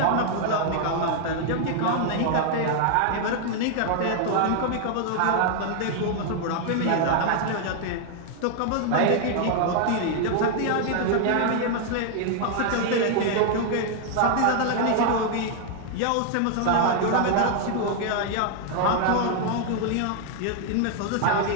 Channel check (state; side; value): different; both; correlation 0.00